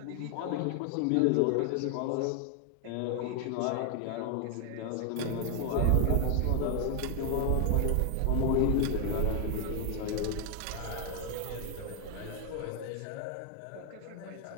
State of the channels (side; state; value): both; different; correlation 0.00